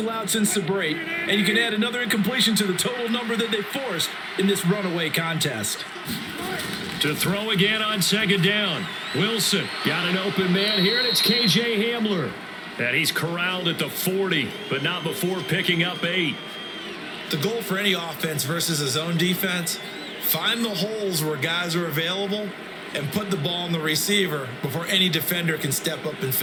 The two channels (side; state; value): both; identical; correlation 1.00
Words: since the break, and you can add another incompletion to the total number that they forced in this runaway contest. To throw again on second down. Wilson got an open man here, and it's KJ Hamler. And he's corralled at the 40, but not before picking up 8. The goal for any offense versus a zone defense, find the holes where guys are available and put the ball on the receiver before any defender can step up and